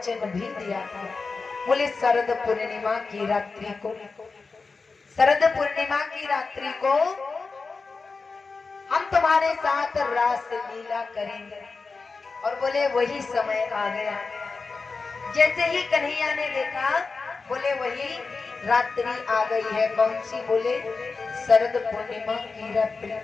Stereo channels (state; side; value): quieter; right; 4.3 dB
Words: भी दिया था। बोले शरद पूर्णिमा की रात्रि को, शरद पूर्णिमा की रात्रि को हम तुम्हारे साथ रास लीला करेंगे। और बोले वही समय आ गया। जैसे ही कन्हैया ने देखा, बोले वही रात्रि आ गई है। कौन सी? बोले शरद पूर्णिमा की रात्रि।